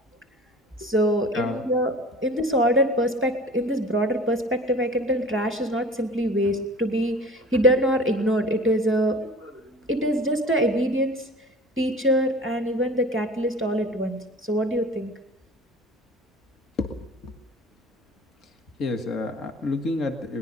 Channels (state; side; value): normal; both; correlation 0.42